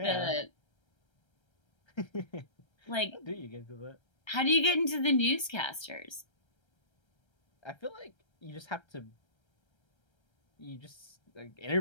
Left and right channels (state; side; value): late; right; 1.3 ms